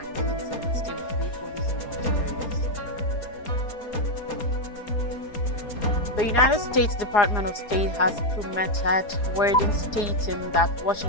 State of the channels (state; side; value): late; right; 4.8 ms